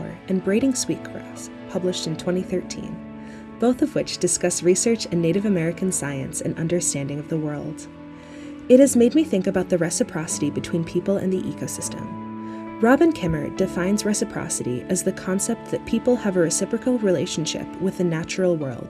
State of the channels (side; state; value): both; identical; correlation 1.00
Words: and Braiding Sweetgrass, published in 2013, both of which discuss research in Native American science and understanding of the world. It has made me think about the reciprocity between people and the ecosystem. Robin Kimmer defines reciprocity as the concept that people have a reciprocal relationship with the natural